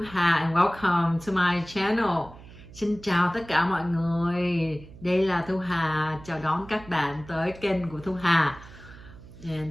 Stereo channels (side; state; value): right; noise; hum, 19 dB below the sound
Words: and welcome to my channel. Xin chào tất cả mọi người. Đây là Thu Hà, chào đón các bạn tới kênh của Thu Hà.